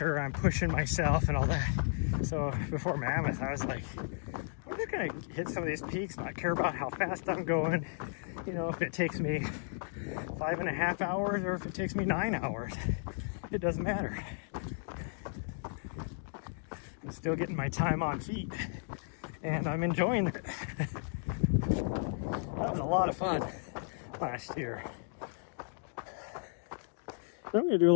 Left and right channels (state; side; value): silent; right; digital silence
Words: I'm pushing myself and all that. So before Mammoth, I was like, I'm just gonna hit some of these peaks, not care about how fast I'm going. You know, if it takes me 5.5 hours or if it takes me 9 hours, it doesn't matter. I'm still getting my time on feet, and I'm enjoying it. That was a lot of fun last year. So I'm gonna do a